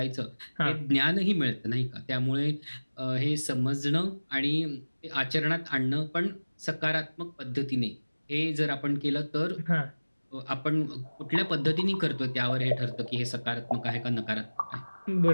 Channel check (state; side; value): inverted; both; correlation -1.00